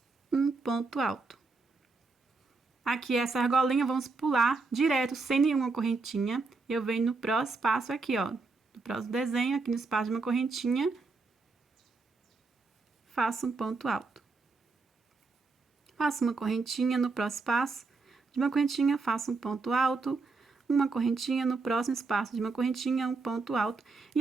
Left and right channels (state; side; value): quieter; left; 4.0 dB